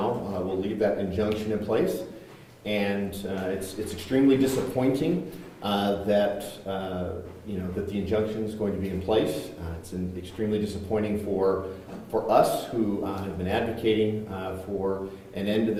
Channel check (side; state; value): both; identical; correlation 1.00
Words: will leave that injunction in place. And it's extremely disappointing that the injunction is going to be in place. It's extremely disappointing for us who have been advocating for an end to